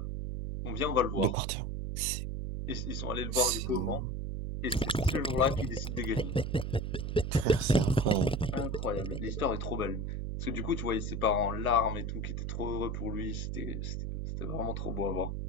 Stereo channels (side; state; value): right; noise; hum, 3 dB below the sound